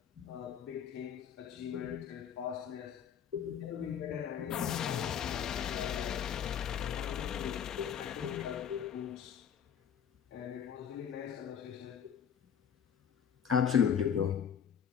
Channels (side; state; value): right; quieter; 8.3 dB